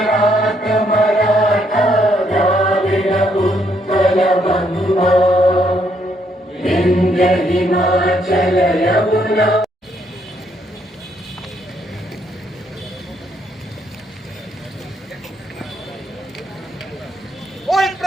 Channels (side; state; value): both; normal; correlation 0.72